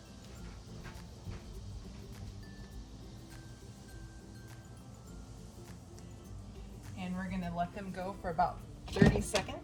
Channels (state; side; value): identical; both; correlation 1.00